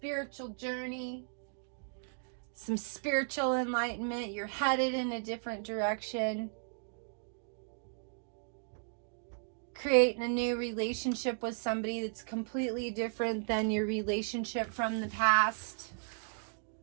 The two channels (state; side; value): silent; left; digital silence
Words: journey, some spiritual enlightenment. You're headed in a different direction. Creating a new relationship with somebody that's completely different than your relationship from the past.